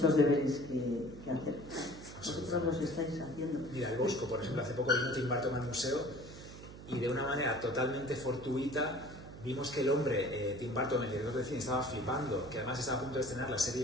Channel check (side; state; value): right; noise; hum, 14 dB below the sound